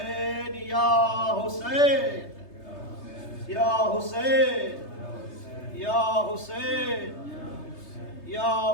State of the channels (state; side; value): late; right; 3.3 ms